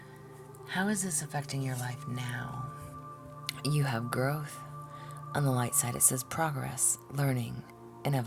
How is this affecting your life now? You have growth. On the light side, it says progress, learning, and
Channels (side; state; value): both; identical; correlation 1.00